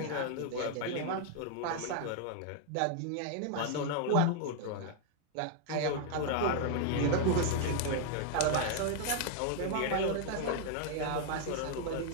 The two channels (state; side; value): different; both; correlation 0.00